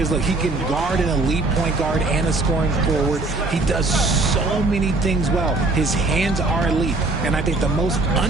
look, he can guard an elite point guard and a scoring forward. He does so many things well. His hands are elite. And I think the most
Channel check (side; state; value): left; quieter; 3.2 dB